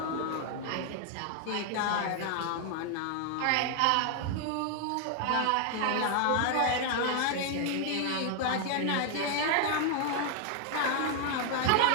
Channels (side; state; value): both; different; correlation 0.00